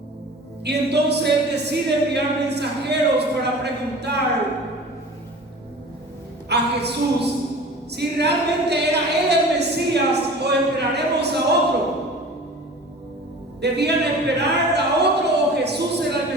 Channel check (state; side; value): normal; both; correlation 0.40